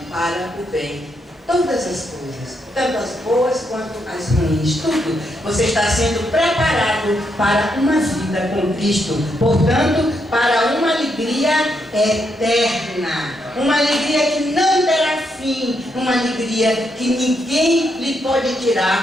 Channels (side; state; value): both; normal; correlation 0.79